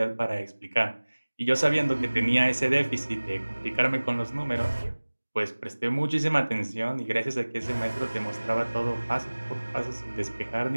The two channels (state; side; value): inverted; both; correlation -1.00